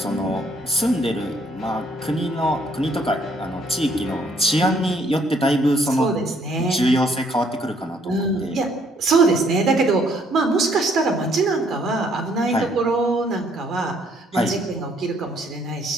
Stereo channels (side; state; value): both; normal; correlation 0.66